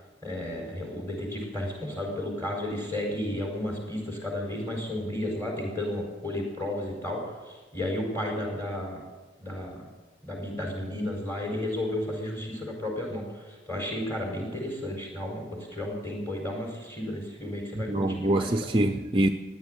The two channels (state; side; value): normal; both; correlation 0.68